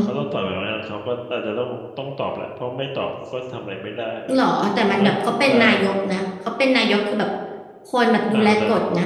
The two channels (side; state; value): both; identical; correlation 1.00